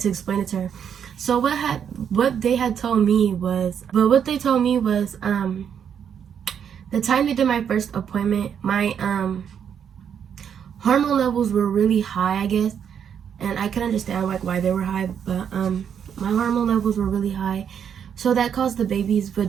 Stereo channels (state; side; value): quieter; left; 8.1 dB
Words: explain it to her. So what they told me was the time they did my first appointment, my hormone levels were really high, I guess. And I can understand like why they were high, but my hormone levels were really high, so that caused the baby's